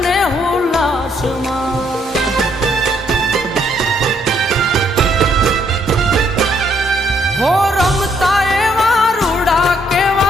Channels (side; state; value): both; normal; correlation 0.70